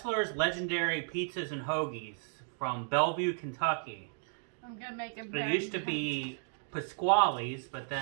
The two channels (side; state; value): left; silent; digital silence